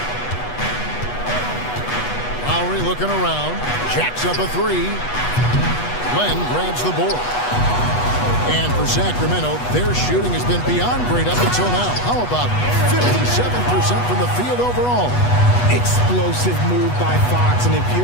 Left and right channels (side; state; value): right; late; 8.2 ms